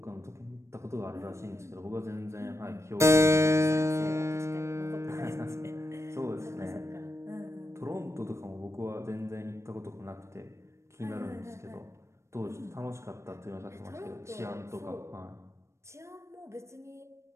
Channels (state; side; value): late; left; 0.13 ms